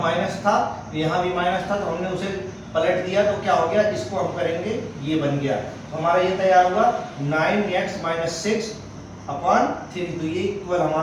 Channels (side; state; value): both; identical; correlation 1.00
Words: माइनस था यहाँ भी माइनस था तो हमने उसे पलट दिया तो क्या हो गया, इसको हम करेंगे ये बन गया। तो हमारा ये तैयार हुआ 9x - 6/3, तो ये इक्वल